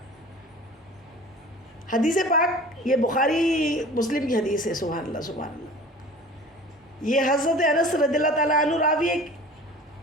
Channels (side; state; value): both; normal; correlation 0.42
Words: حدیث پاک یہ بخاری مسلم کی حدیث ہے. سبحان اللہ سبحان اللہ. یہ حضرت انس رضی اللہ تعالیٰ عنہ راوی